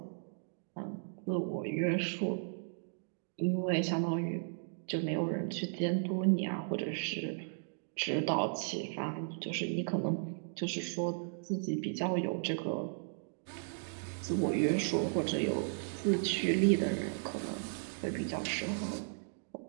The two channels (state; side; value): silent; left; digital silence